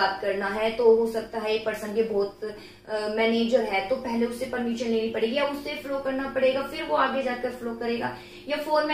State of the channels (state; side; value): identical; both; correlation 1.00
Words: करना है तो हो सकता है एक पर्सन के बहुत मैनेजर है तो पहले उससे परमिशन लेनी पड़ेगी या उससे फ्लो करना पड़ेगा, फिर वो आगे जाकर फ्लो करेगा। या